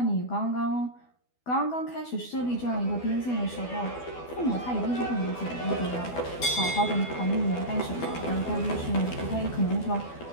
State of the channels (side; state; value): right; late; 12 ms